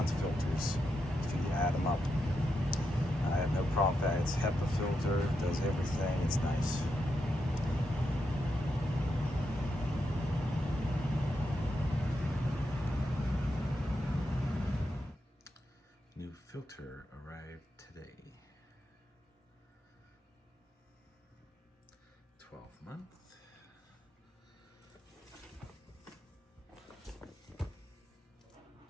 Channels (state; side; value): normal; both; correlation 0.84